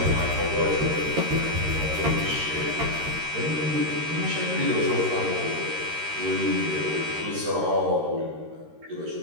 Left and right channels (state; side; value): late; left; 13 ms